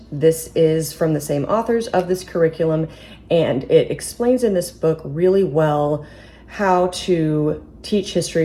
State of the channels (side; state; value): both; identical; correlation 1.00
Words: This is from the same authors of this curriculum, and it explains in this book really well how to teach